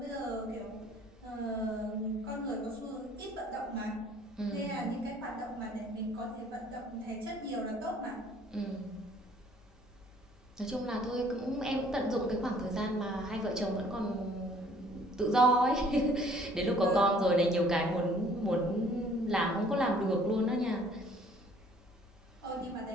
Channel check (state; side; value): normal; both; correlation 0.57